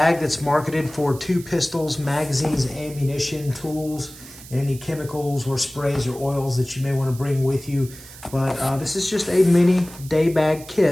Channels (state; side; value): noise; right; hiss, 18 dB below the sound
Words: that's marketed for 2 pistols, magazines, ammunition, tools, and any chemicals or sprays or oils that you may want to bring with you. But this is just a mini day bag